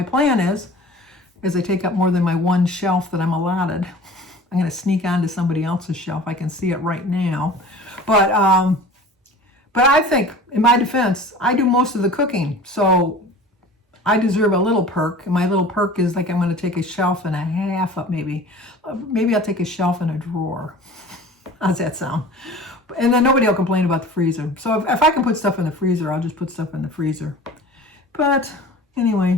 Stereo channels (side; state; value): both; normal; correlation 0.41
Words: plan is, as they take up more than my one shelf that I'm allotted. I'm going to sneak onto somebody else's shelf. I can see it right now. But I think, in my defense, I do most of the cooking. So I deserve a little perk. And my little perk is like I'm going to take a shelf and a half up maybe. Maybe I'll take a shelf and a drawer. How's that sound? And then nobody will complain about the freezer. So if I can put stuff in the freezer, I'll just put stuff in the freezer. But